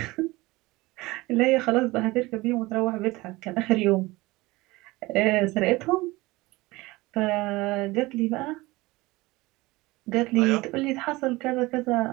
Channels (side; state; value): left; quieter; 21.1 dB